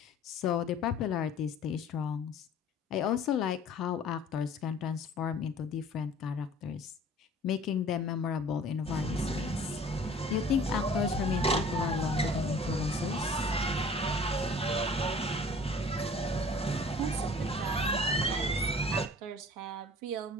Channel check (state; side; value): normal; both; correlation 0.48